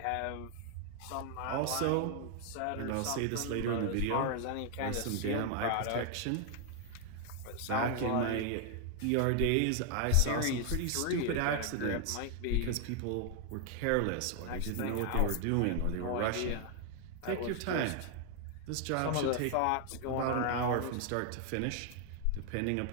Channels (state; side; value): different; both; correlation 0.00